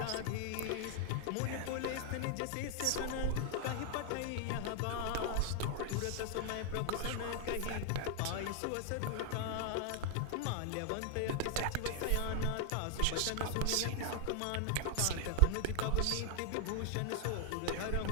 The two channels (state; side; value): different; both; correlation 0.00